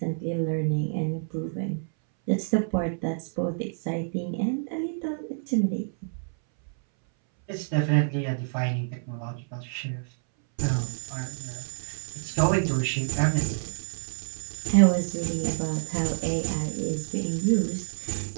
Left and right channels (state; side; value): silent; left; 59 dB below the other